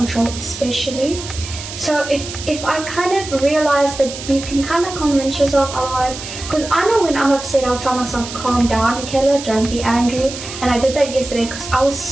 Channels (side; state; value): right; noise; hiss, 10 dB below the sound